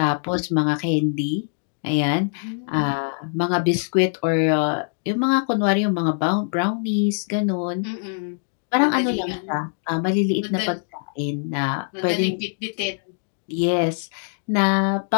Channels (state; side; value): silent; right; 63 dB below the other